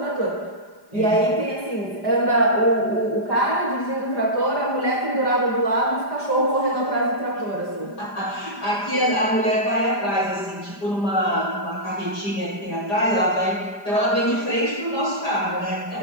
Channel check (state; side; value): late; right; 5.0 ms